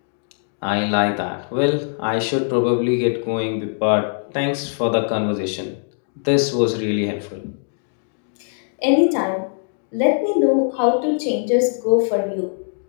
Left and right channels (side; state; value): right; silent; digital silence